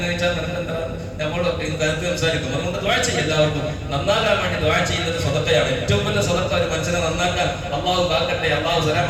വെച്ചാൽ നിനക്കെന്താ നമ്മൾ കരുത്ത് സംസാരിക്കും. അതുകൊണ്ട് ദ്വാ ചെയ്യും. എല്ലാവർക്കും നന്നാകാൻ വേണ്ടി ദ്വാ ചെയ്യുന്നത് സദഖയാണ്. ഏറ്റവും വലിയ സദഖ ഒരു മനുഷ്യനെ നന്നാക്കാൻ, അള്ളാഹു കാക്കട്ടെ, അള്ളാഹു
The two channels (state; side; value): identical; both; correlation 1.00